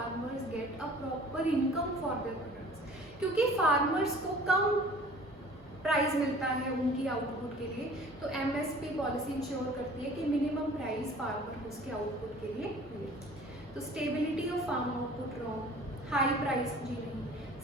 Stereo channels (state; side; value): normal; both; correlation 0.48